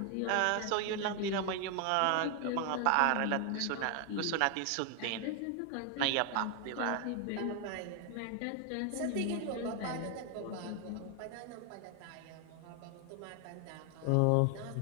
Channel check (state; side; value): different; both; correlation 0.01